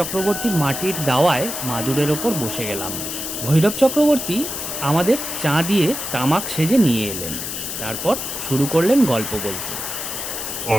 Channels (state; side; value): noise; left; hiss, 5 dB below the sound